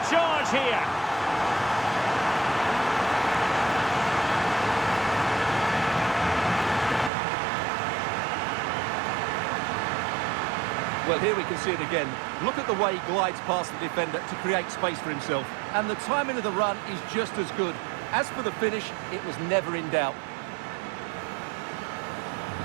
charge here. Well, here we can see it again. Look at the way he glides past the defender to create space for himself. And the timing of the run is just as good. As for the finish, it was never in doubt.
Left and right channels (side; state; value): left; drops out; at 7.1 s